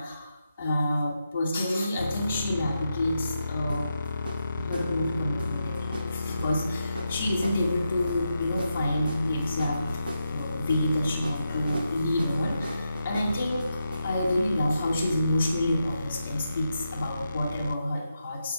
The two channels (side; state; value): both; inverted; correlation -0.86